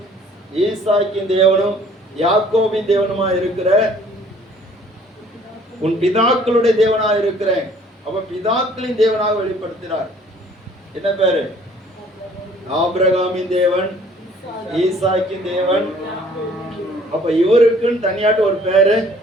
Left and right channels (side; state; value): both; normal; correlation 0.56